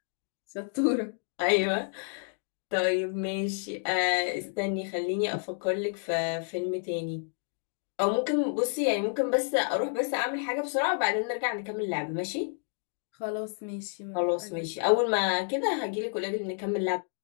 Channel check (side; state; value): right; silent; 58 dB below the other